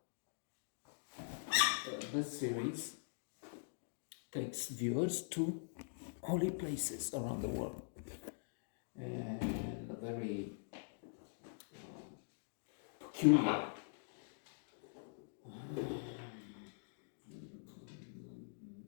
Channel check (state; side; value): silent; right; digital silence